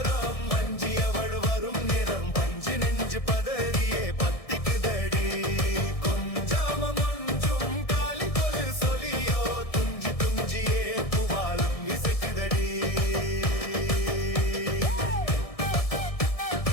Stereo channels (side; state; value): right; late; 1.6 ms